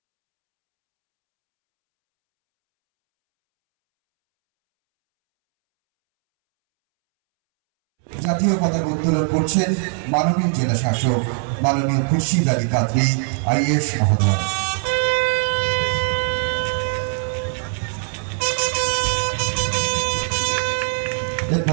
ও বিদ্যালয় ছাত্রছাত্রীদের ও নৃত্যশিল্পীদের নিয়ে একটি অনুষ্ঠান হয়। পশ্চিম মেদিনীপুর থেকে শান্তনু বর্ধনের রিপোর্ট, ওয়ার্ল্ড জনতা টিভি। জাতীয় পতাকা উত্তোলন করছেন মাননীয় জেলাশাসক মাননীয় খুরশেদ আলী কাদেরী আইএএস মহোদয়।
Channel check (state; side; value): silent; left; 65 dB below the other